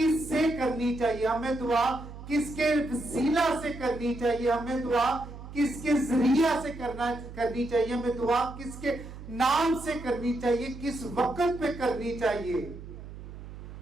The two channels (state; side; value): noise; right; hum, 13 dB below the sound